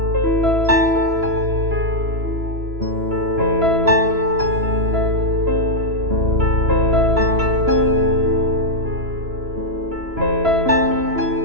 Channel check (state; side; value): late; left; 2.9 ms